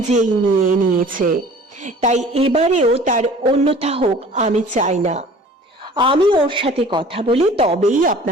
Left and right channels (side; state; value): both; normal; correlation 0.47